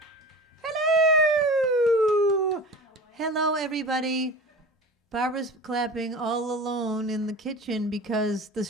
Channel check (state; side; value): normal; both; correlation 0.35